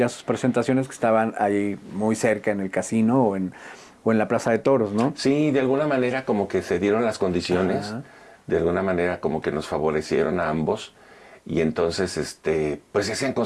a sus presentaciones que estaban ahí muy cerca en el casino o en la Plaza de Toros, ¿no? Sí, de alguna manera como que se dieron las condiciones, Ajá. de alguna manera como que nos favorecieron a ambos y entonces pues se hacían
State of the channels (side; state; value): both; identical; correlation 1.00